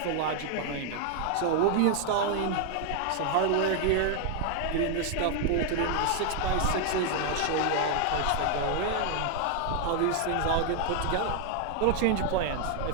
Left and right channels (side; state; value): both; different; correlation 0.00